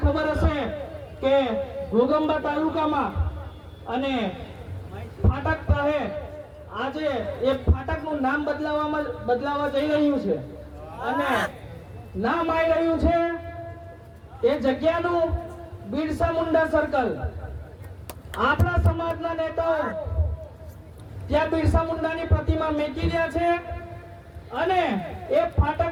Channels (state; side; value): identical; both; correlation 1.00